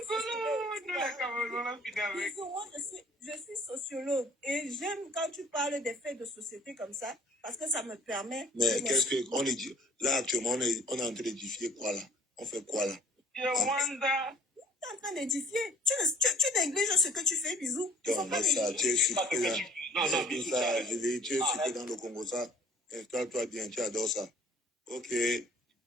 Disons, moi, je suis sociologue et j'aime quand tu parles des faits de société comme ça parce que ça me permet... Mais qu'est-ce qu'on est dit? Là, actuellement, on est en train d'édifier quoi là? On fait quoi là? Je wonder. Tu es en train d'édifier. Tu négliges ce que tu fais, bisous. Donc, ça, tu es super là. Non, ça, Julie, tu es super dans le Congo, ça. Installe-toi bien, tu adores ça. Ok.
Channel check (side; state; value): both; normal; correlation 0.54